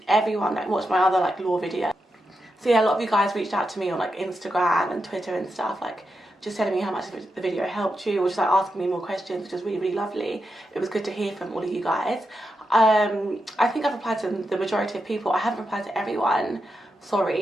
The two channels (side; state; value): both; normal; correlation 0.86